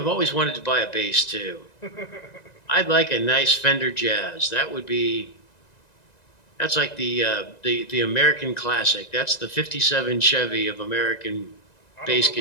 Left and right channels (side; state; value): right; late; 1.9 ms